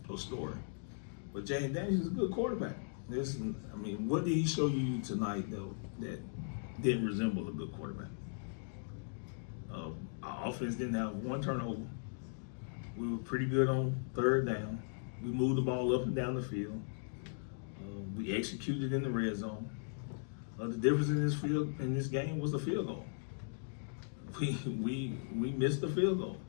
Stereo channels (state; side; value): silent; right; digital silence